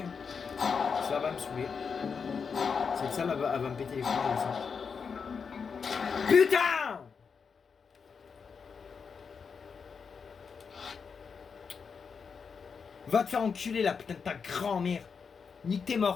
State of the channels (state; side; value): quieter; right; 5.8 dB